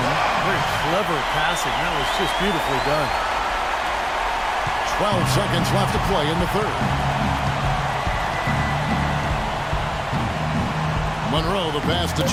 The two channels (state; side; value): identical; both; correlation 1.00